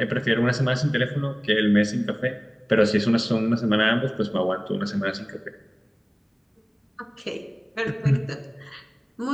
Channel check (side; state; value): both; identical; correlation 1.00